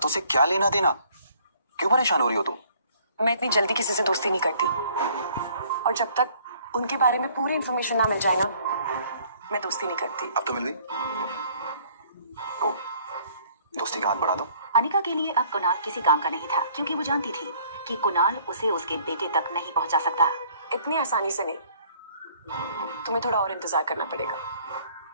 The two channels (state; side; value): inverted; both; correlation -0.59